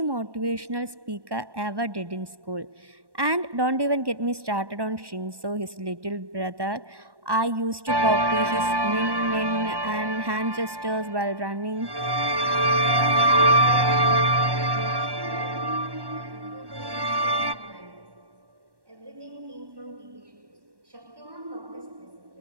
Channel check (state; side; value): late; left; 1.1 ms